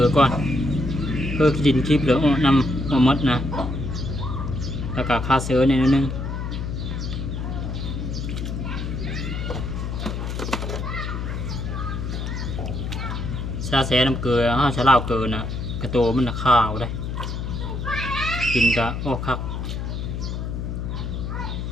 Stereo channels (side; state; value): left; noise; hum, 4 dB below the sound